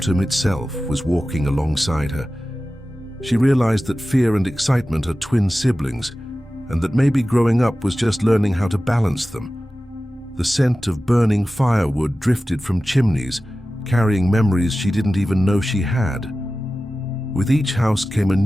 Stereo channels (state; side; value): normal; both; correlation 0.95